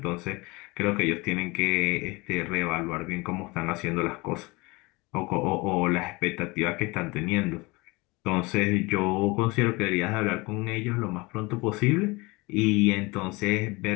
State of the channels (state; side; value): quieter; right; 24.7 dB